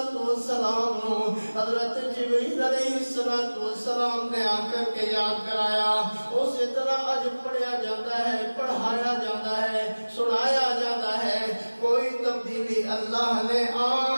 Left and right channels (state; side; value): inverted; both; correlation -1.00